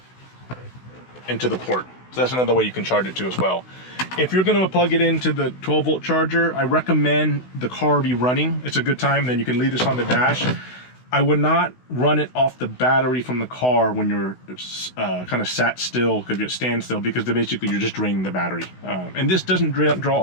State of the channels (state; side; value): late; right; 16 ms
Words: into the port. So that's another way you can charge it too as well. If you're gonna plug it into the 12-volt charger, I recommend the car be running. It's a good time, then you can leave this on the dash. I would not run it off the battery from the car when you're kind of sat still, because you stand still, because basically you're just draining the battery. And this doesn't